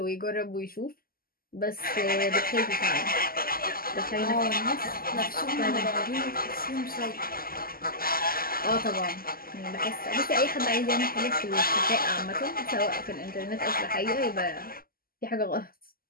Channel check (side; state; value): right; late; 0.42 ms